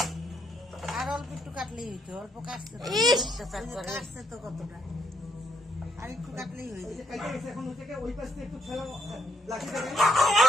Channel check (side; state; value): both; normal; correlation 0.74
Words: আর অল্প একটু কাটলেই হইতো, অল্প কাটছে তো কতটা, আর একটু কাটলেই হইতো।